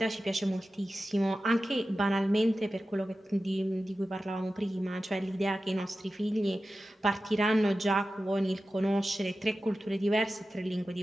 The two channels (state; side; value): normal; both; correlation 0.94